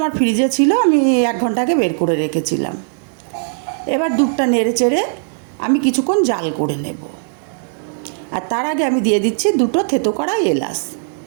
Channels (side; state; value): left; silent; digital silence